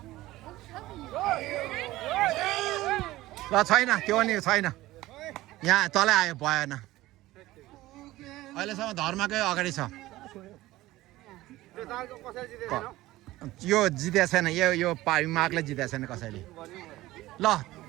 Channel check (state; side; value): quieter; left; 17.2 dB